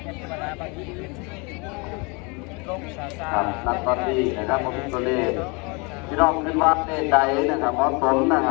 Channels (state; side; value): quieter; right; 30.0 dB